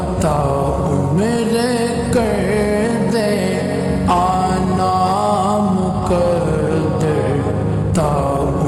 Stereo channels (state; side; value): identical; both; correlation 1.00